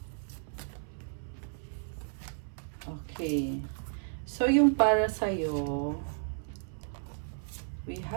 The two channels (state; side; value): silent; left; 56 dB below the other